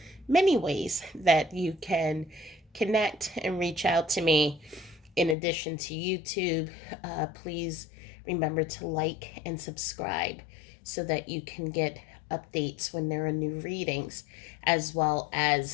many ways that you can connect and reach out to me. In addition to YouTube, please remember to like and subscribe so that you can get updates when there are new readings, as well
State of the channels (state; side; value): drops out; right; at 5.4 s